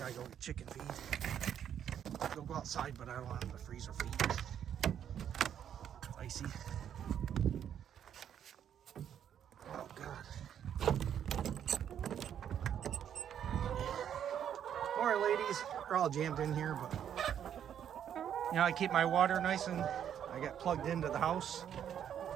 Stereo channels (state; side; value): quieter; left; 9.3 dB